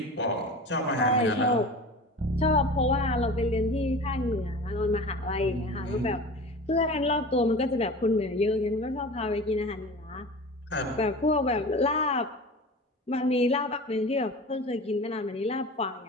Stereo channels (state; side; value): normal; both; correlation 0.35